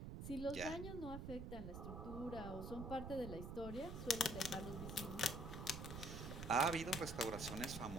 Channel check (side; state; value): right; noise; rumble, 6 dB below the sound